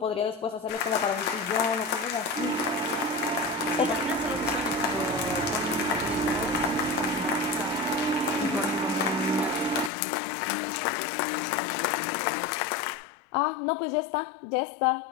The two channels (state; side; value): drops out; right; at 9.9 s